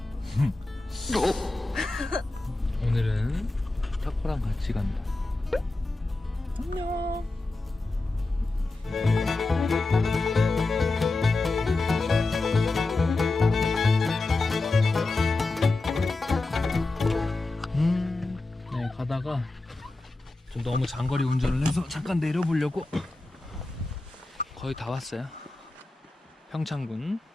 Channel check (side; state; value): right; quieter; 3.1 dB